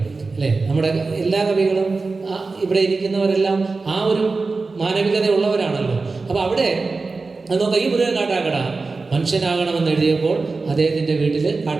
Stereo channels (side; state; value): left; quieter; 3.9 dB